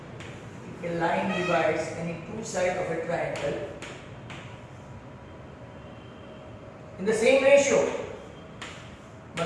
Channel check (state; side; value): identical; both; correlation 1.00